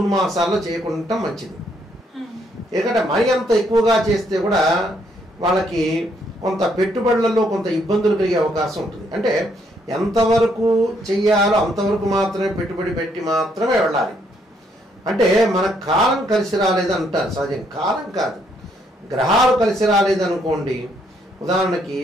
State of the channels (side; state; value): both; normal; correlation 0.71